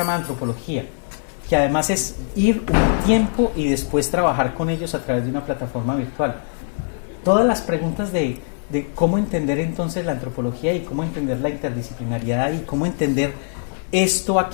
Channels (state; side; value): silent; right; 65 dB below the other